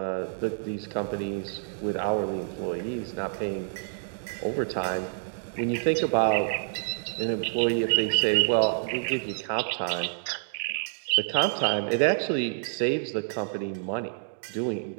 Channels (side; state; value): left; silent; digital silence